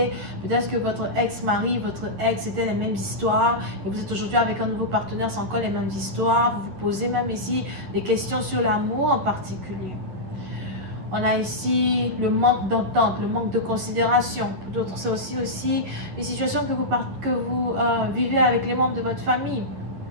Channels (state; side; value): late; left; 11 ms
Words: Peut-être que votre ex-mari, votre ex, c'était les mêmes histoires et vous êtes aujourd'hui avec un nouveau partenaire, c'est encore les mêmes histoires. Vous vous posez même ici des questions sur l'amour en particulier. On a ici le manque d'entente, le manque de considération. Pour d'autres, c'est aussi les situations que vous vivez avec les membres de votre famille.